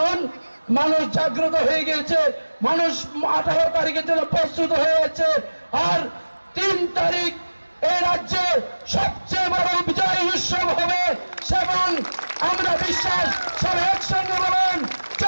মানুষ জাগ্রত হয়ে গেছে, মানুষ 18 তারিখের জন্য প্রস্তুত হয়ে গেছে। আর 3 তারিখ এই রাজ্যে সবচেয়ে বড় বিজয় উৎসব হবে এবং আমরা বিশ্বাস সব একসঙ্গে বলেন,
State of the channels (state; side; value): inverted; both; correlation -1.00